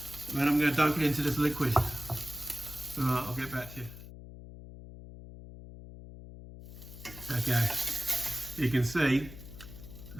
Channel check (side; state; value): left; noise; hum, 14 dB below the sound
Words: then I'm going to dunk it into this liquid. Alright, I'll get back to you. Okay, you can see